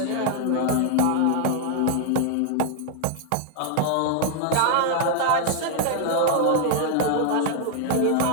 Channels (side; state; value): both; different; correlation 0.00